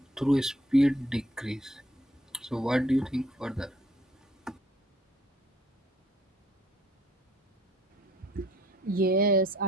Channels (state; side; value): normal; both; correlation 0.62